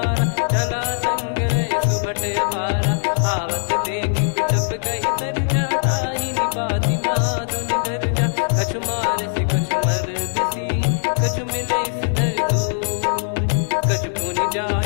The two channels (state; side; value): silent; right; digital silence